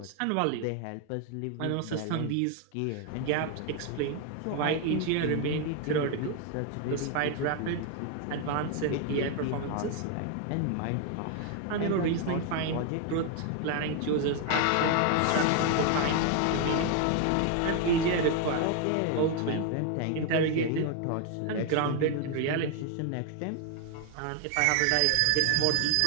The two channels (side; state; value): both; different; correlation 0.01